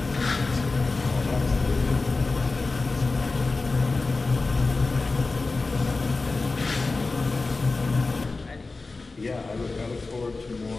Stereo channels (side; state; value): right; quieter; 3.7 dB